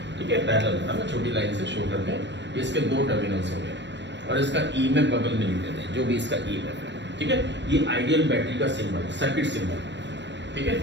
ठीक है, पैरेलल है ना, छोटी लाइन से शो करते हैं। इसके दो टर्मिनल्स हो गए और इसका ईएमएफ बगल में लिख देते हैं, जो भी इसका ईएमएफ है। ठीक है, ये आइडियल बैटरी का सिंबल, सर्किट सिंबल। ठीक है,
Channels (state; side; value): late; left; 0.52 ms